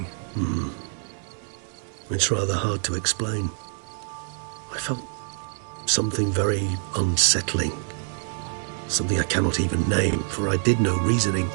It's rather hard to explain. I felt something very unsettling. Something I cannot even name, for I did no reasoning.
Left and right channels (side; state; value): left; silent; 61 dB below the other